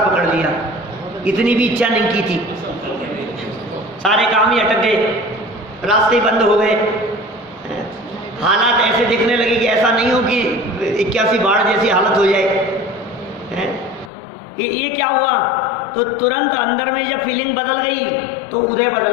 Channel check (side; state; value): right; drops out; at 14.1 s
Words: पकड़ लिया। इतनी भी इच्छा नहीं की थी, सारे काम ही अटक गए, रास्ते बंद हो गए, हालात ऐसे दिखने लगे कि ऐसा नहीं हो कि 81 बाढ़ जैसी हालत हो जाए। ये क्या हुआ? तो तुरंत अंदर में जब फीलिंग बदल गई तो उदय